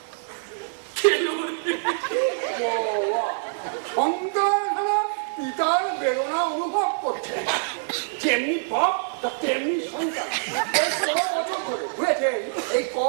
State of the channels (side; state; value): left; silent; digital silence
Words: সন্তান হারা পিতার বেদনা অনুভব করছে, যেমনি বাপ তেমনি সন্তান। এই ক